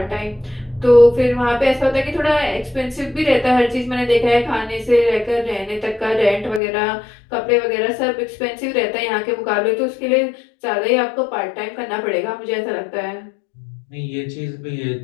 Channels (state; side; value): drops out; right; at 6.6 s